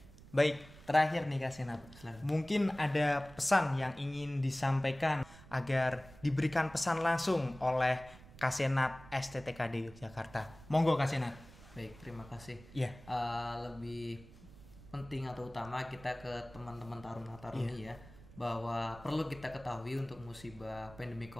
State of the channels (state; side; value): noise; right; rumble, 20 dB below the sound